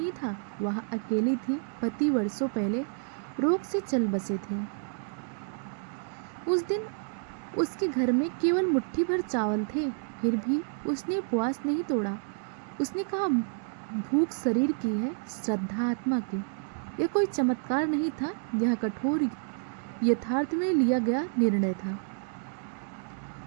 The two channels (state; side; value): silent; left; 58 dB below the other